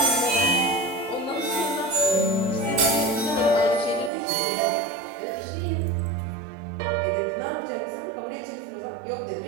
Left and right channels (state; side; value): drops out; left; at 4.1 s